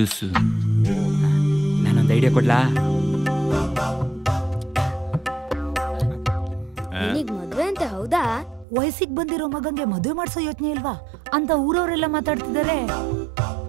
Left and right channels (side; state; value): left; drops out; at 8.7 s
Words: ನಾನೊಂದು ಐಡಿಯಾ ಕೊಡ್ಲಾ? ಮದ್ವೆ ಅಂತ ಹೌದಾ? ವಯಸ್ಸಿಗೆ ಬಂದಿರೋ ಮಗಂಗೆ ಮದುವೆ ಮಾಡ್ಸೋ ಯೋಚನೆ ಇಲ್ವಾ ಅಂತ ಊರವರೆಲ್ಲ ಮಾತಾಡ್ತಿದ್ದಾರೆ.